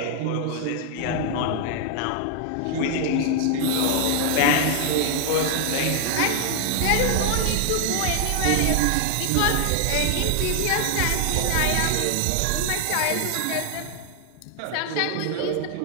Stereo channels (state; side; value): different; both; correlation 0.00